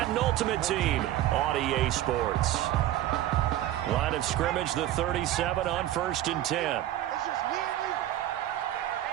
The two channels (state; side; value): quieter; left; 13.4 dB